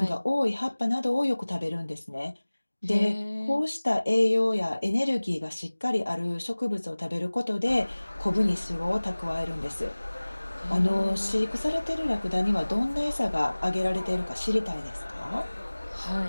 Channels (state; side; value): inverted; both; correlation -1.00